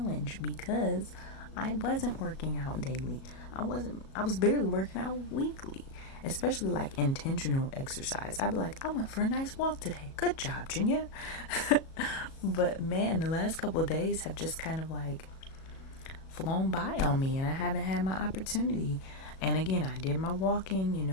because I wasn't working out daily. I was barely working out weekly, especially like intentional exercise. I'd be like, I went for a nice walk today. Good job, Junior. But man, the last couple of days have just kind of like flown by on me, and I haven't had my opportunity. And again, I did my walking,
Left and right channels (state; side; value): late; right; 37 ms